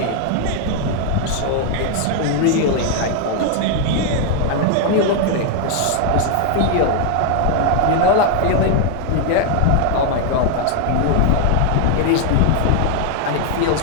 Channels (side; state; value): both; different; correlation 0.00